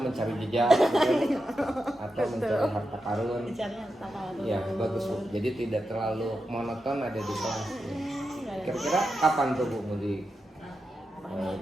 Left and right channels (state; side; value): normal; both; correlation 0.88